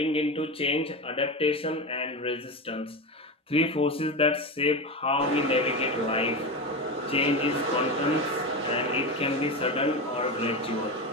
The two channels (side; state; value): both; normal; correlation 0.20